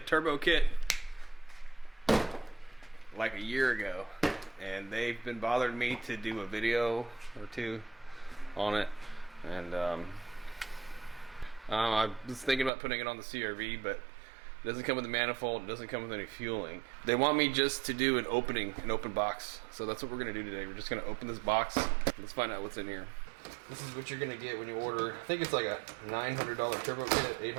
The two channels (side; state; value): left; drops out; at 12.7 s